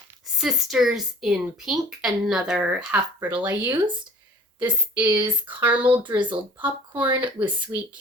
Sisters in Pink, another half brittle I used. This is caramel drizzled popcorn with sweet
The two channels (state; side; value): normal; both; correlation 0.47